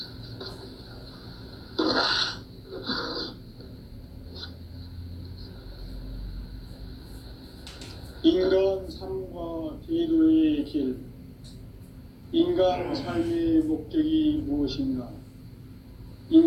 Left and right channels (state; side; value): identical; both; correlation 1.00